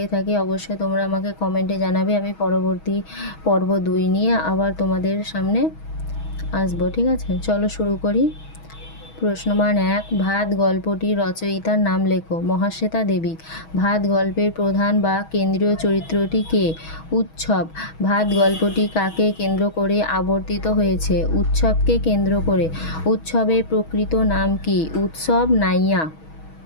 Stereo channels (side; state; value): right; late; 6.2 ms